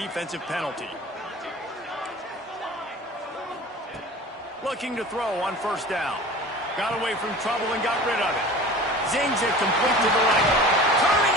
penalty. Looking to throw on 1st down. Got away from trouble and got rid of it. Zings it complete to the right. Turning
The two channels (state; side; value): normal; both; correlation 0.39